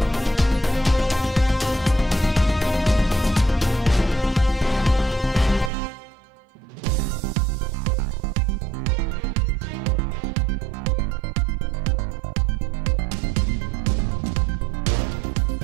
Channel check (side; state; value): left; drops out; at 5.7 s